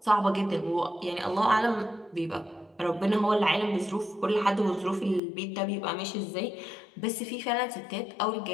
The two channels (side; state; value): right; drops out; at 5.2 s